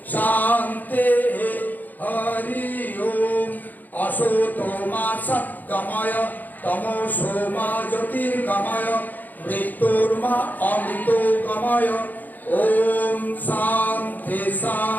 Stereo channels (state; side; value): late; right; 0.084 ms